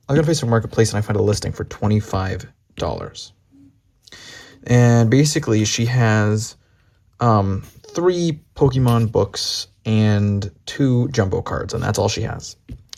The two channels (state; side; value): identical; both; correlation 1.00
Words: I go to Facebook Marketplace and I find a listing for $25, and basically she has um, three Pokemon books and two jumbo cards, and that's all she has.